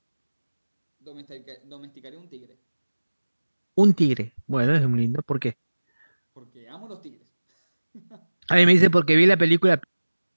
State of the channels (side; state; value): both; inverted; correlation -1.00